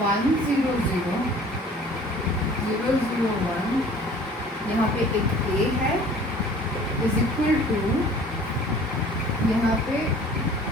1 0 0 0 0 1, यहाँ पे एक A है इज इक्वल टू, यहाँ पे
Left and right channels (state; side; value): normal; both; correlation 0.49